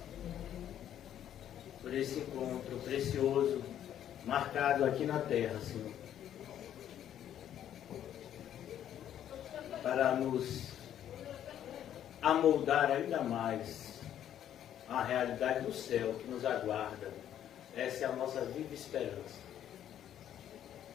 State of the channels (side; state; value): right; quieter; 10.6 dB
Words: por esse encontro precioso, marcado aqui na terra, Senhor, para nos amoldar ainda mais a realidade do céu que nos aguarda. Essa é a nossa viva esperança.